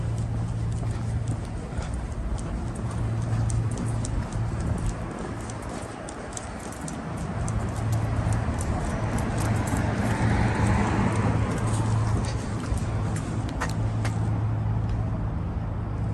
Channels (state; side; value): identical; both; correlation 1.00